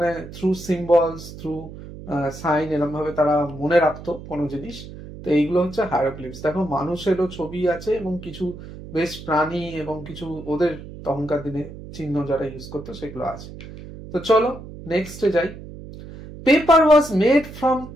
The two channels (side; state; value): right; noise; hum, 14 dB below the sound